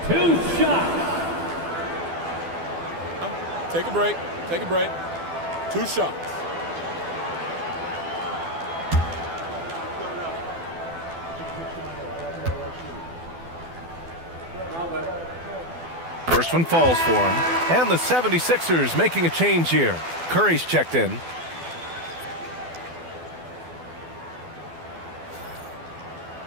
2 shots. Take a break. Take a break. 2 shots. First one falls for him. And the 76ers making a change here. Curry's checked in.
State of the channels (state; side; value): late; left; 12 ms